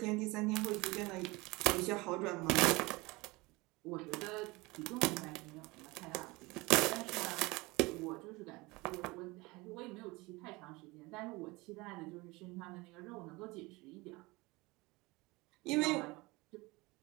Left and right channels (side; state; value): left; quieter; 23.3 dB